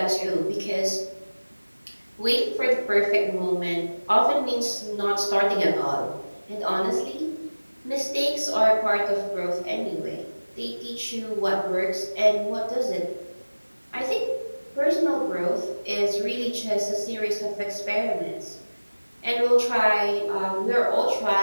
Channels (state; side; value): inverted; both; correlation -1.00